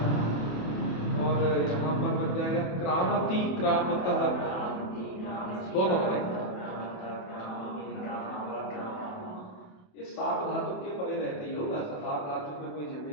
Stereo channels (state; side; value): late; right; 27 ms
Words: और यहाँ पर बन जाएगा क्रामति, क्रामतः, दोनों बनेगा। ये सात धातु के परे रहते ही होगा, सात धातु में कोई